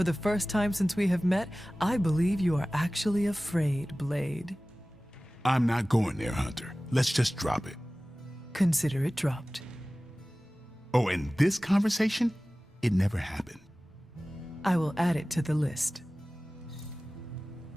the first time since we have met, I believe you are actually afraid, Blade. I'm not going there, Hunter. Let's just drop it. Consider it dropped. Oh, and this conversation? It never happened. I will add it to the list.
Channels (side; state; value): both; normal; correlation 0.97